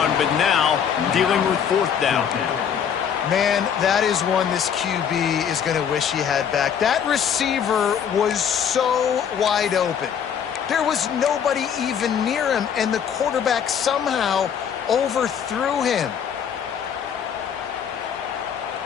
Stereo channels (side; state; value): right; quieter; 8.0 dB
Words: but now dealing with 4th down. Man, that is one this QB is going to wish he had back. That receiver was so wide open. There was nobody even near him, and the quarterback somehow overthrew him.